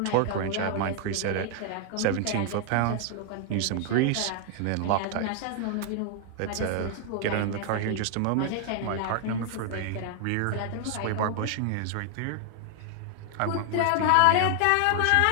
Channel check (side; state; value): both; different; correlation 0.00